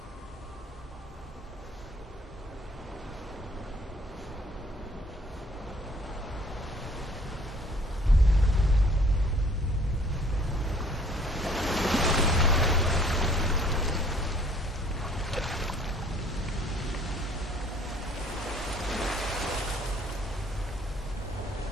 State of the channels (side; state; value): both; normal; correlation 0.57